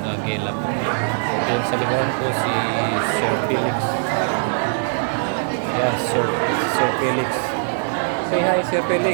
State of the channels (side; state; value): left; silent; digital silence